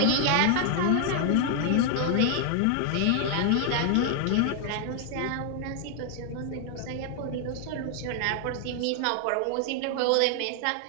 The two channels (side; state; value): both; different; correlation 0.00